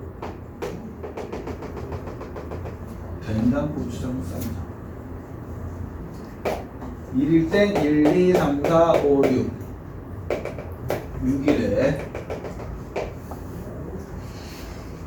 된장 고추장 쌈장 1일 땐 1, 2, 3, 4, 5, 6 6일에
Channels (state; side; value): identical; both; correlation 1.00